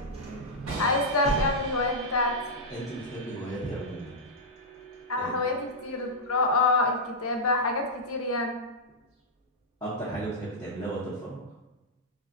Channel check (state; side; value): normal; both; correlation -0.08